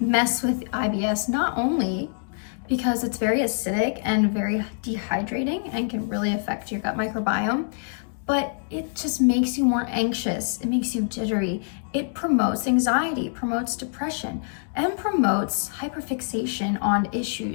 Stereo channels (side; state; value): right; silent; digital silence